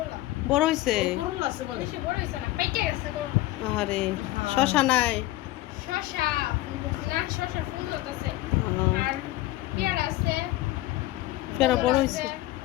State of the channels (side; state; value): right; quieter; 17.3 dB